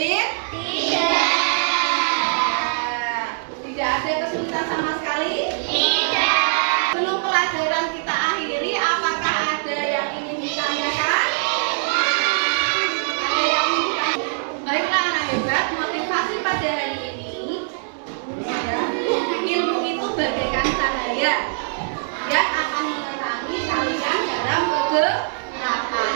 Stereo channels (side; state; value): left; silent; digital silence